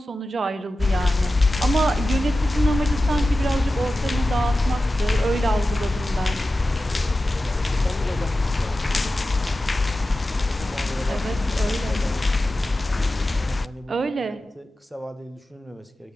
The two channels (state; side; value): normal; both; correlation 0.94